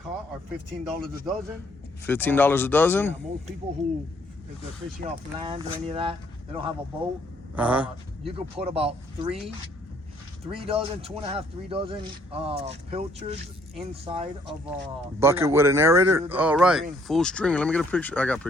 are $15 a dozen. $15 a dozen? Yeah, most people who, if they're fishing off land or any of that, they don't have a boat. Uh-huh. You could put about 3 dozen, 2.5, 3 dozen pilchards inside of a Bucket with an aerator? Full All right, string. full stringer. Let me get a picture. I got a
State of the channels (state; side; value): normal; both; correlation 0.65